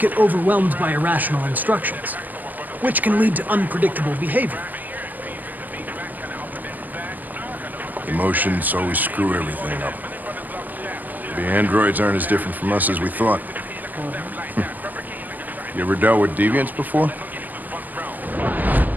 get overwhelmed by irrational instructions, which can lead to unpredictable behavior. Emotions always screw everything up. The androids aren't as different from us as we thought. You ever dealt with deviants before?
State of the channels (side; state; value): left; late; 0.083 ms